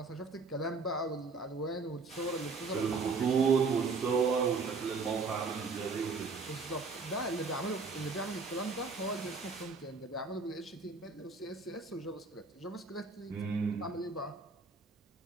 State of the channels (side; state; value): left; quieter; 4.3 dB